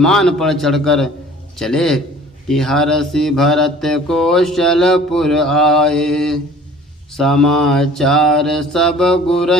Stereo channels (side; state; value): both; normal; correlation 0.49